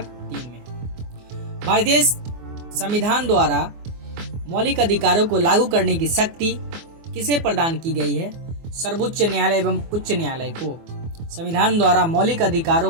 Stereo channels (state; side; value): late; left; 24 ms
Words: भारतीय संविधान द्वारा मौलिक अधिकारों को लागू करने की शक्ति किसे प्रदान की गई है? सर्वोच्च न्यायालय एवं उच्च न्यायालय को। संविधान द्वारा मौलिक